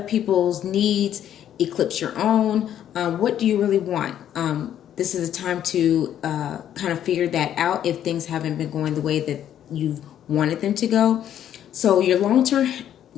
needs eclipse your own. What do you really want? This is a time to kind of figure that out if things haven't been going the way that you've wanted them to go. So your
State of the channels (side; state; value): right; quieter; 10.5 dB